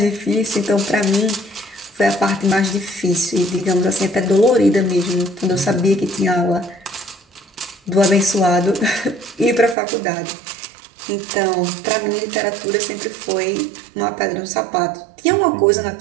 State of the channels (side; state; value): left; drops out; at 9.8 s